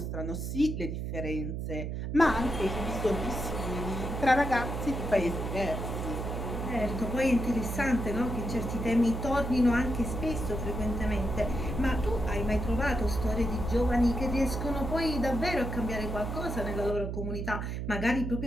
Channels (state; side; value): noise; right; hum, 3 dB below the sound